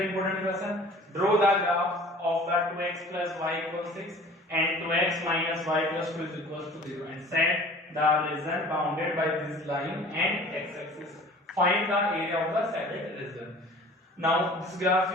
important question. Draw the graph of the 2x plus y equals 6 and 2x minus y plus 2 is equals to 0 and set the region bounded by this line and x-axis. Find the area of the said region. Now this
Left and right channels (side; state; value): both; normal; correlation 0.46